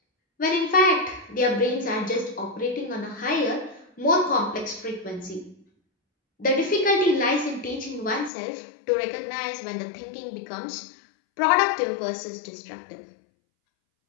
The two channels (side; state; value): right; drops out; at 8.3 s